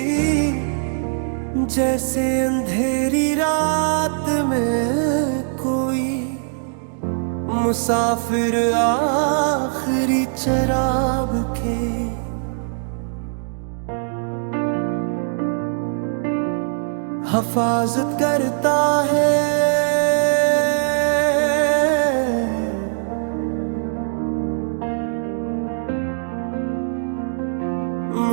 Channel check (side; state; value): left; silent; digital silence